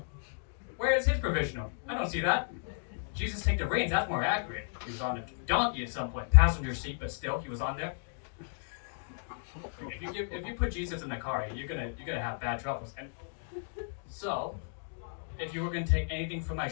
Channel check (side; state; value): right; silent; digital silence